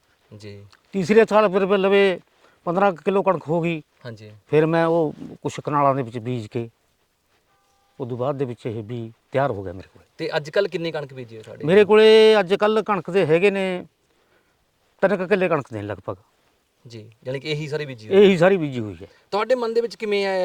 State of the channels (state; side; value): identical; both; correlation 1.00